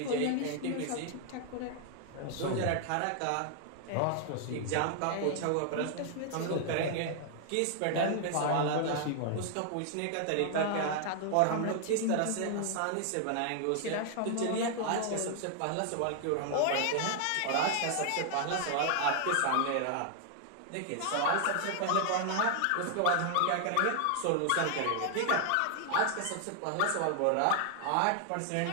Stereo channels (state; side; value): different; both; correlation 0.00